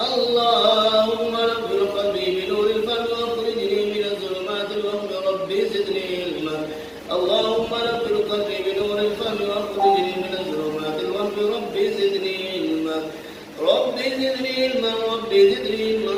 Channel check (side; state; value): both; identical; correlation 1.00